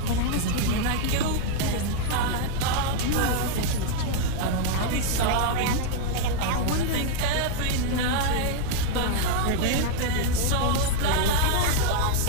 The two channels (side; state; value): both; different; correlation 0.00